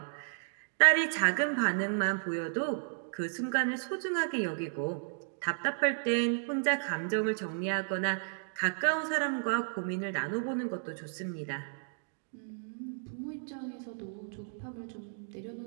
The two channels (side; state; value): left; silent; digital silence